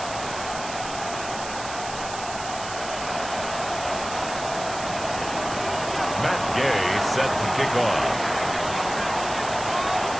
Set to kick off.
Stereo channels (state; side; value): noise; right; hiss, 10 dB below the sound